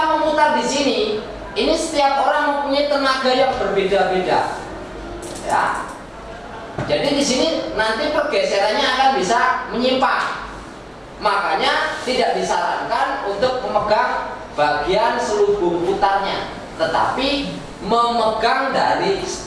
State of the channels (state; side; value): identical; both; correlation 1.00